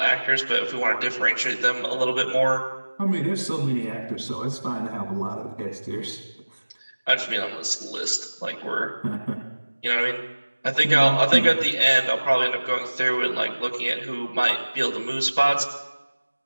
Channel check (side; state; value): both; inverted; correlation -1.00